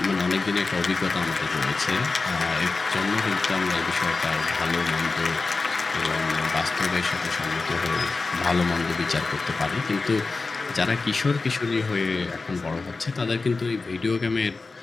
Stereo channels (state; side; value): quieter; right; 3.9 dB